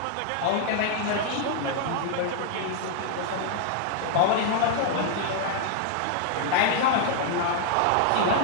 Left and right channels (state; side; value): different; both; correlation 0.00